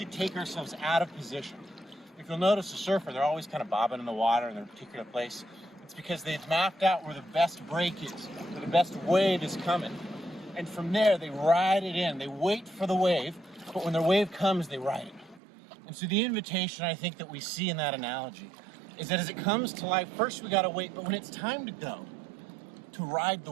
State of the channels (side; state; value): left; drops out; at 15.4 s